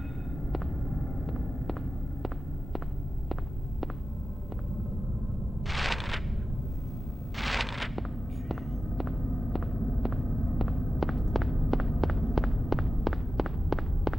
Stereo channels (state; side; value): normal; both; correlation 0.94